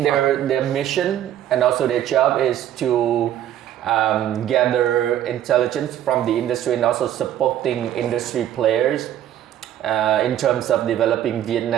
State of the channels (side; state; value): left; quieter; 11.4 dB